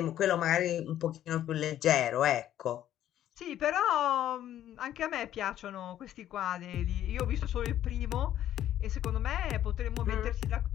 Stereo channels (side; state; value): right; quieter; 11.8 dB